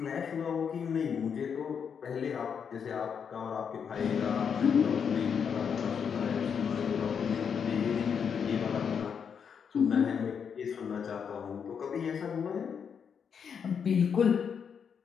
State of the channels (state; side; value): quieter; right; 7.0 dB